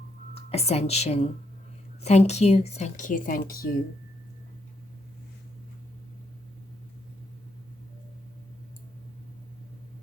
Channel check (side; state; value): both; normal; correlation 0.77